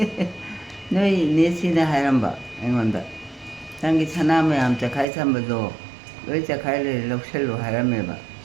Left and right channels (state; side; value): drops out; left; at 5.1 s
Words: ꯅꯣꯏ ꯅꯦꯁꯤꯅ ꯍꯥꯏꯔꯝꯕ ꯑꯩꯉꯣꯟꯗ ꯅꯪꯒꯤ ꯁꯅꯥ ꯃꯌꯥꯝ ꯆꯈꯥꯏ ꯊꯝꯕꯗꯣ ꯂꯣꯏ ꯆꯈꯥꯏ ꯂꯩꯔꯦ ꯂꯧꯁꯜꯂꯨ ꯍꯥꯏꯔꯝꯃꯦꯕ